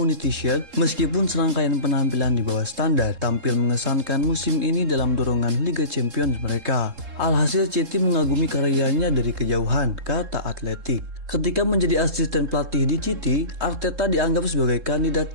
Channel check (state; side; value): late; left; 3.7 ms